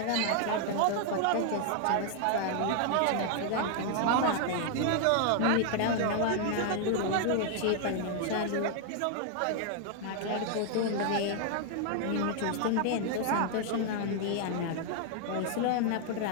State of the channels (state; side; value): different; both; correlation 0.00